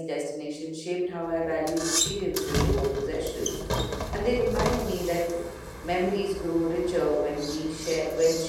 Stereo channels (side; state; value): both; identical; correlation 1.00